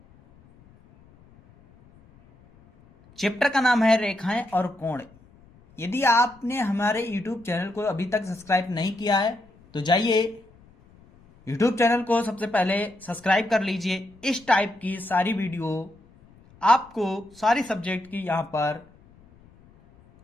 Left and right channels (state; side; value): noise; left; rumble, 28 dB below the sound